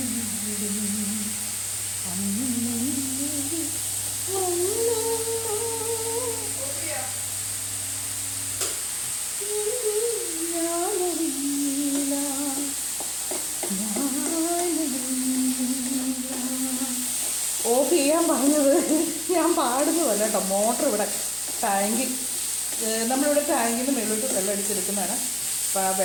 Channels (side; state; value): right; noise; hum, 21 dB below the sound